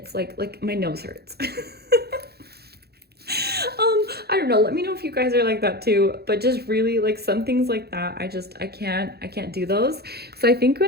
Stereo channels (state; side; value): late; left; 0.46 ms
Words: like my nose hurts. I don't know, let me know if you guys are like that too, but just really like some things like that, I can't do those. So I think